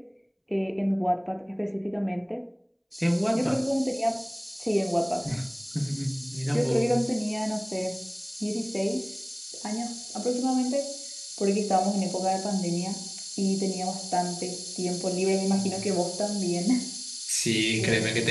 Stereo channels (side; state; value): both; identical; correlation 1.00